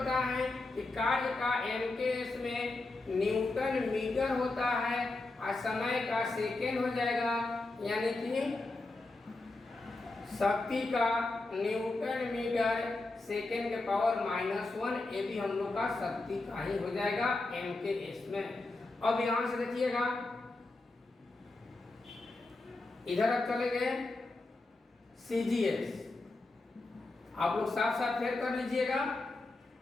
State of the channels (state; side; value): quieter; right; 3.2 dB